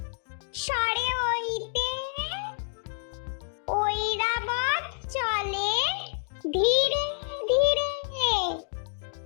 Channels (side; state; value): right; silent; digital silence